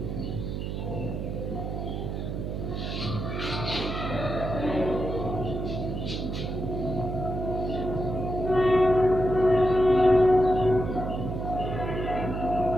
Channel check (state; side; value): noise; right; hum, 4 dB below the sound